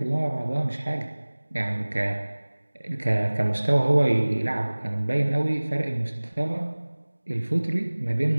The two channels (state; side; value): inverted; both; correlation -1.00